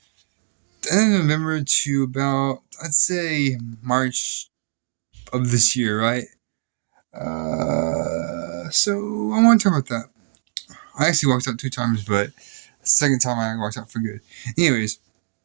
to about, I'd say, March of this year, right? So I want to talk about that. I actually walked out 2 times, but the second time I walked out for good. Anyways,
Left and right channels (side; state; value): left; silent; digital silence